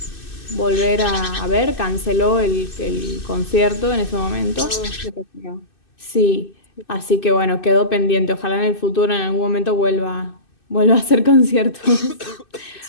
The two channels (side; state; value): right; late; 2.6 ms